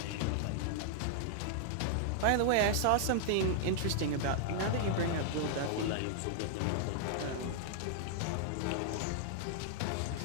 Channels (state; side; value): different; both; correlation -0.01